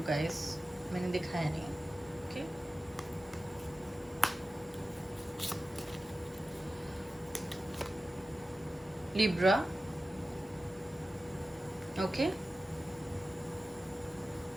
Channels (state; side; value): normal; both; correlation 0.94